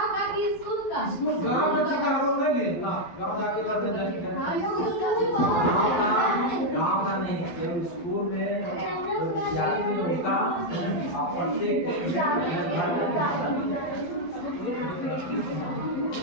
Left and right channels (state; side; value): late; right; 12 ms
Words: का कि स्कूल का? स्कूल गांव का ठीक है, हम लोग नहीं लिए ना, गांव जाके लड़ने जाएंगे। गाँव का नहीं, जब स्कूल में जो विद्यार्थी उनका प्रत्येक